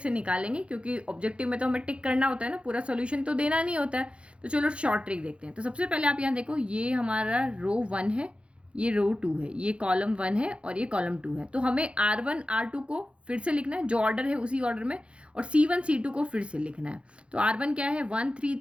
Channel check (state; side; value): late; left; 0.059 ms